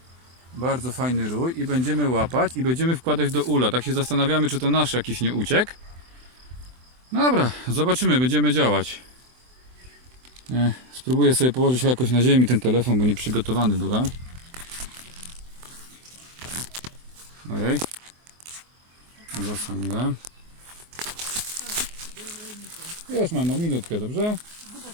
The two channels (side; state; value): left; late; 24 ms